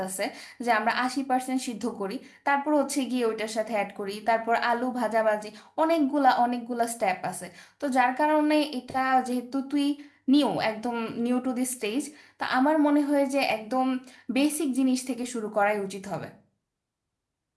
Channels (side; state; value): both; identical; correlation 1.00